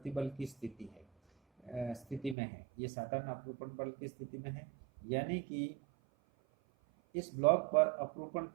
की स्थिति में है। ये साधारण अपरूपण बल की स्थिति में है, यानी कि इस ब्लॉक पर अपरूपण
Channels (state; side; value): drops out; left; at 2.4 s